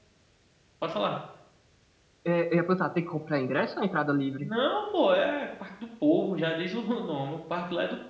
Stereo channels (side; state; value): both; identical; correlation 1.00